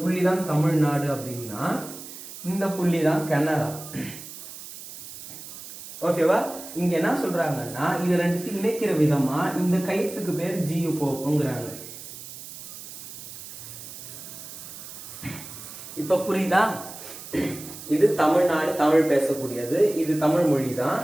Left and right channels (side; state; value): right; noise; hiss, 13 dB below the sound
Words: தமிழ்நாடு அப்படின்னா இந்த புள்ளி தான் கனடா. ஓகேவா? இங்க என்ன சொல்றாங்கன்னா இது ரெண்டுத்தையும் இணைக்கிற விதமா இந்த கைத்துக்கு பேர் ஜியு போக்குங்கிறாங்க. இப்ப புரியுதா? இது தமிழ்நாடு, தமிழ் பேசக்கூடியது, இது தமிழ் மொழி தான்.